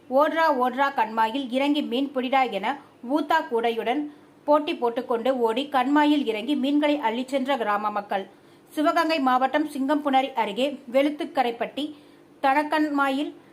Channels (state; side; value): identical; both; correlation 1.00